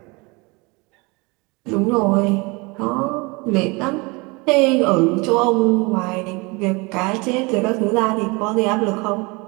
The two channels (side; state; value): left; quieter; 26.9 dB